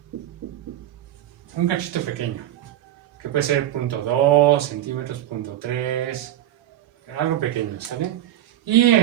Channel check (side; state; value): left; quieter; 12.6 dB